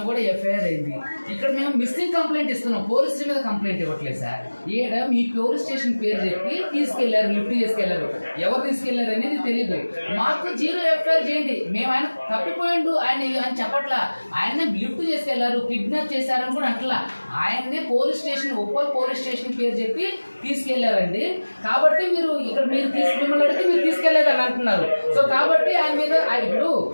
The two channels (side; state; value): both; inverted; correlation -1.00